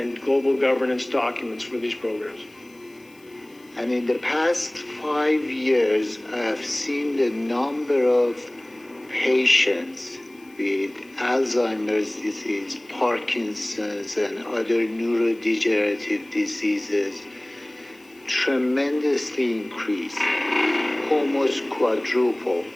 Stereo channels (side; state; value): left; noise; hiss, 29 dB below the sound